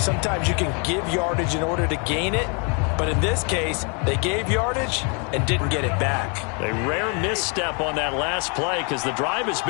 sometimes you can give yardage in order to gain it. But in this case, they gave yardage and didn't get it back. A rare misstep on that last play because the drive has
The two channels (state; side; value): quieter; right; 35.8 dB